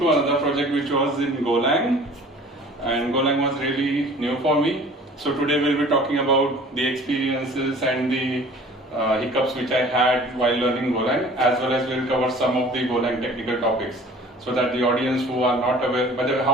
to another project which was in Golang, and Golang was really new for me. So today we'll be talking about the experiences and the hiccups which I had while learning Golang, as well as we'll cover some of the Golang technical topics, so that the audience who are not aware. By the way,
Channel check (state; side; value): normal; both; correlation 0.47